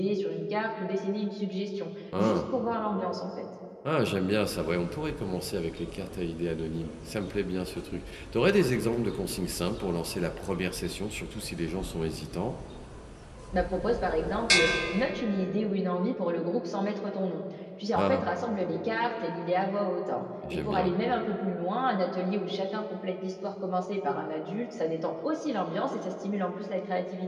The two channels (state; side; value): identical; both; correlation 1.00